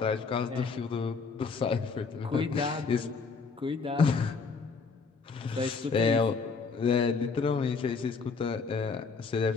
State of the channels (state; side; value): quieter; right; 4.9 dB